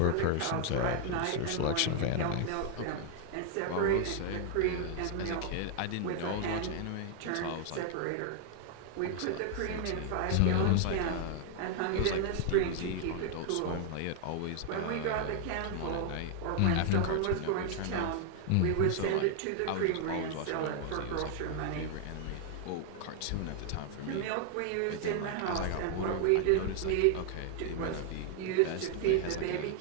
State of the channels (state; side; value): different; both; correlation 0.00